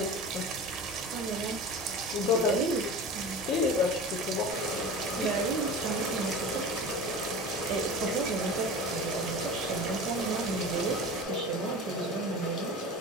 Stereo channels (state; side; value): normal; both; correlation 0.34